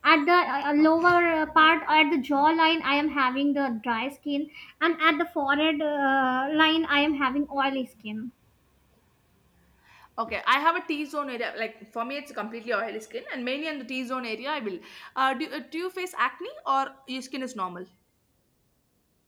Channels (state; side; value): identical; both; correlation 1.00